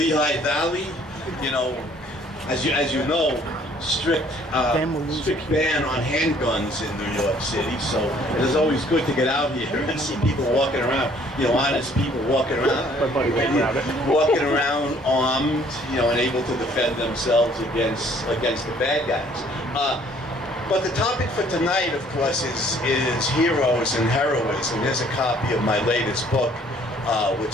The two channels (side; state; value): both; normal; correlation 0.59